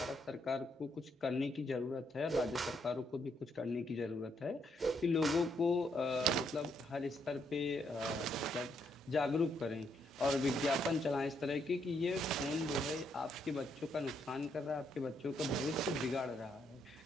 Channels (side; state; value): both; normal; correlation 0.75